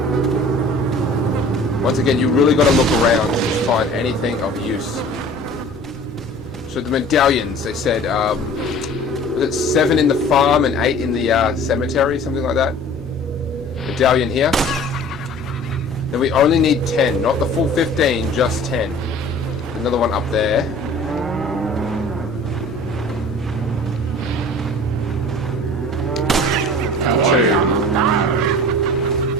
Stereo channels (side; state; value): both; normal; correlation 0.45